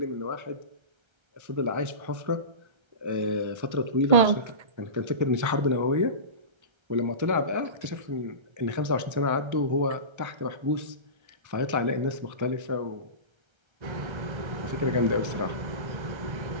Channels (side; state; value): left; late; 1.3 ms